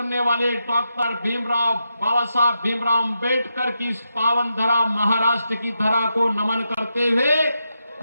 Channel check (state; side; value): inverted; both; correlation -0.86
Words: वाले डॉक्टर बाबा साहब भीमराव अंबेडकर की इस पावन धरा महाराष्ट्र की धरा को नमन करते हुए